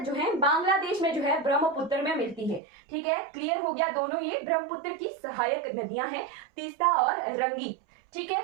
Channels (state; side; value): drops out; left; at 2.6 s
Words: जो है बांग्लादेश में जो है ब्रह्मपुत्र में मिलती है। ठीक है, क्लियर हो गया। दोनों ये ब्रह्मपुत्र की सहायक नदियां हैं, तीस्ता और रंगीत। ठीक है,